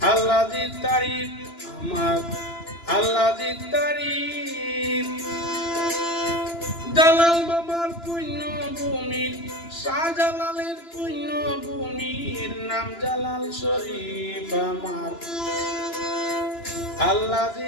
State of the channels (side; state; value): right; late; 2.9 ms